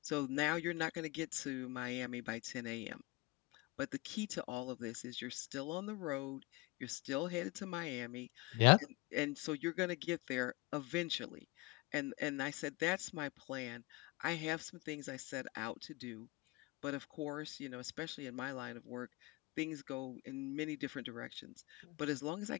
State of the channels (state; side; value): quieter; right; 23.7 dB